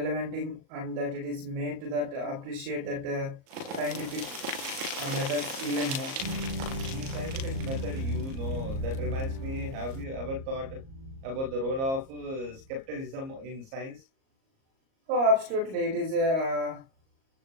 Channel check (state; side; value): late; left; 37 ms